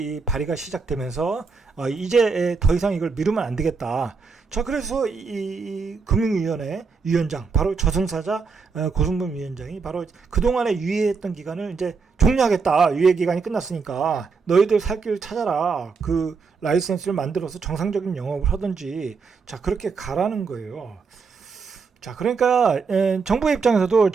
발의가 시작되면서 이제 더 이상 이걸 미루면 안 되겠다. 자, 그래서 이 금융위원회 위원장, 바로 저승사자 고승범 위원장이 바로 그동안에 유예했던 기간을 이제 종료하겠다. 유예 기간이 끝났으니까 너희들 살 길 찾아라. 그 라이센스를 만들어서 정상적인 영업을 하든지, 자, 그렇게 가라는 거예요. 자, 그러니까 정부 입장에서도,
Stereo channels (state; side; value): quieter; left; 5.0 dB